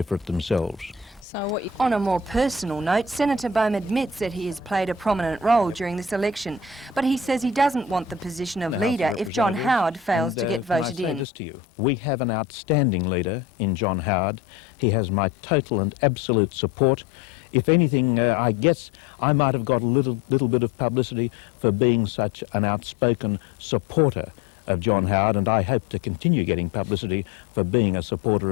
for it themselves. On a more personal note, Senator Boehm admits that he has played a prominent role during this election, but he says he doesn't want the position of leader if John Howard fails to get voted in. We have an outstanding leader in John Howard. He has my total and absolute support. If anything, I guess I might have got a little bit of publicity for being such an outspoken supporter of John Howard, and I hope to continue getting publicity for being a supporter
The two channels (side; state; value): right; drops out; at 11.2 s